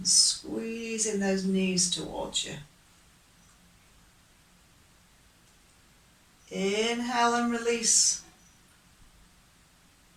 squeezing those knees towards you. Inhale and release.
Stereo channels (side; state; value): both; identical; correlation 1.00